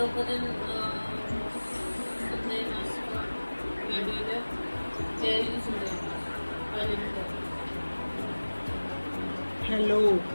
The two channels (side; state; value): both; inverted; correlation -1.00